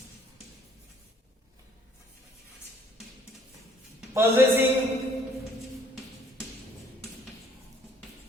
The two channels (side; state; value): both; normal; correlation 0.60